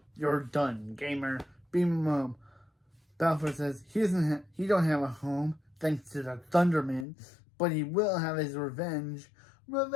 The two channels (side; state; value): right; drops out; at 7.1 s